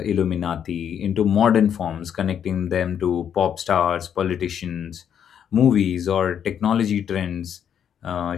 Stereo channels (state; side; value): quieter; right; 8.7 dB